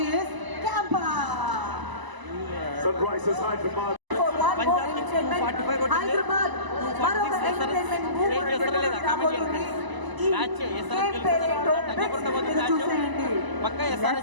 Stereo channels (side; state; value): left; late; 1.0 ms